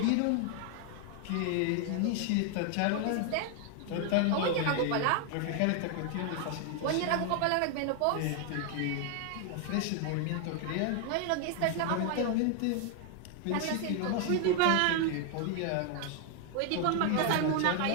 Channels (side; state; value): both; different; correlation 0.00